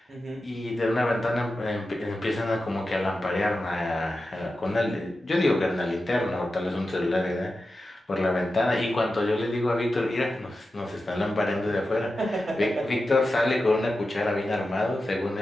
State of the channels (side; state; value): both; normal; correlation 0.92